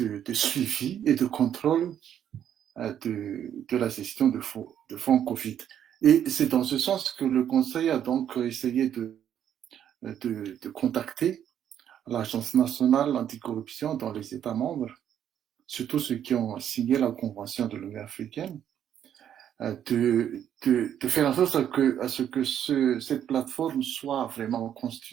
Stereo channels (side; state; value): left; quieter; 9.8 dB